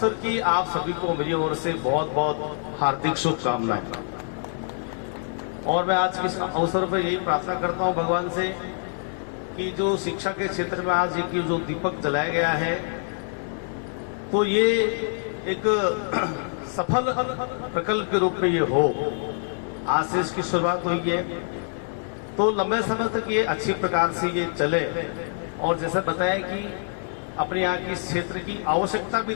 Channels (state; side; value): silent; right; 61 dB below the other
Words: की आप सभी को मेरी ओर से बहुत बहुत हार्दिक शुभकामनाएं। और मैं आज इस अवसर पर यही प्रार्थना करता हूँ भगवान से कि जो शिक्षा के क्षेत्र में आज एक जो दीपक जलाया गया है, तो ये एक सफल प्रकल्प के रूप में ये हो। आज से इसकी शुरुआत हुई है, तो लंबे समय तक ये अच्छी प्रकार से ये चले। और जैसा बताया कि अपने यहाँ की इस क्षेत्र की आवश्यकता भी